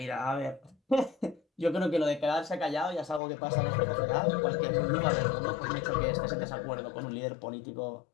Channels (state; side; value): drops out; right; at 3.2 s